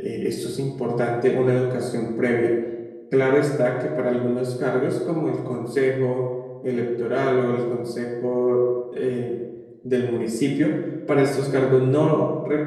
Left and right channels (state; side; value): identical; both; correlation 1.00